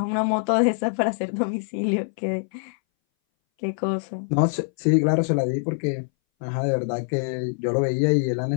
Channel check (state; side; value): silent; right; 61 dB below the other